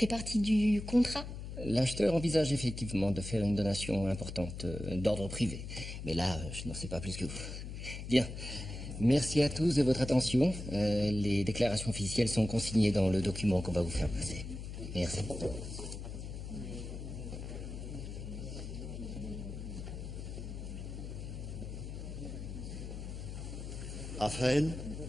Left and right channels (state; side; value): noise; left; hum, 8 dB below the sound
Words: partie du contrat? L'acheteur envisage effectivement de faire une donation importante d'ordre privé. Mais là, je n'en sais pas plus que vous. Bien. Merci à tous de votre attention. Les déclarations officielles sont consignées dans le document qu'on va vous faire passer. Merci. Raphaël,